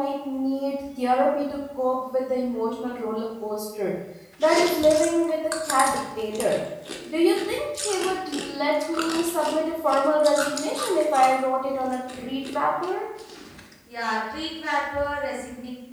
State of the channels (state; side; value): identical; both; correlation 1.00